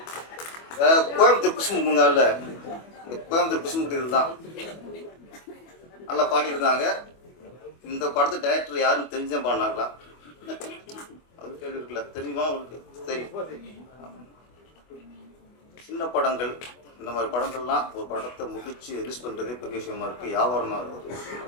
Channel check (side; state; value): right; late; 25 ms